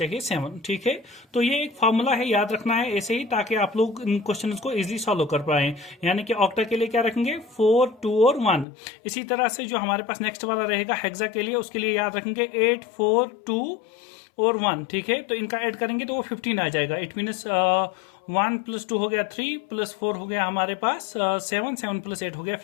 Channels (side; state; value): right; drops out; at 8.7 s